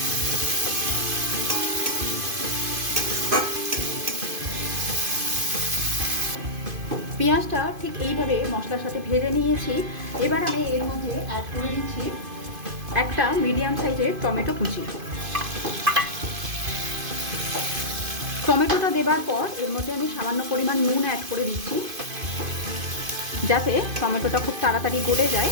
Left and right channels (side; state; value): left; late; 2.5 ms